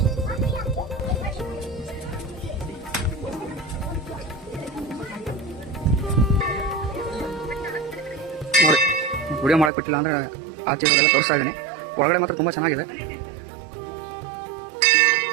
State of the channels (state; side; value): drops out; left; at 9.7 s